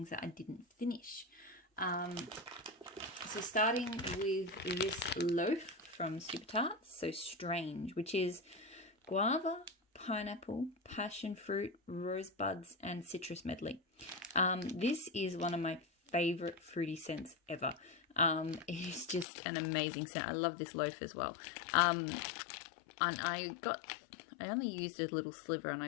that I didn't finish. So starting with this loaf from Super Tarts, so Strange, which is guava, pineapple, passion fruit, rosebuds and citrus medley. This is one of my favorite fruity scents ever. It's just an amazing scent. I love this loaf as well. And I only used a little sliver and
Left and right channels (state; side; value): drops out; right; at 19.2 s